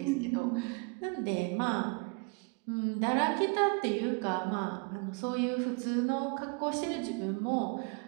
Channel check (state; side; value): quieter; left; 31.9 dB